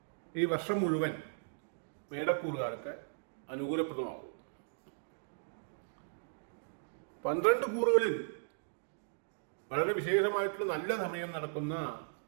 ഈ വർഷം മുഴുവൻ മേടക്കൂറുകാർക്ക് അനുകൂലപ്രദമാകും. 12 കൂറുകളിൽ വളരെ വിശേഷമായിട്ടുള്ള നല്ല സമയം നടക്കുന്ന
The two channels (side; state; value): left; silent; digital silence